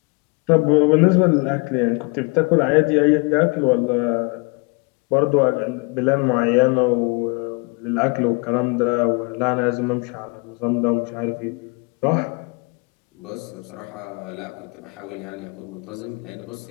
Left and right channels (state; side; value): quieter; right; 31.1 dB